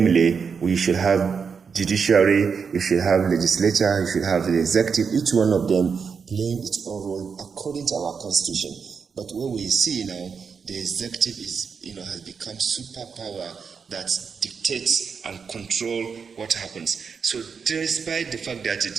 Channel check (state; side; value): quieter; left; 6.0 dB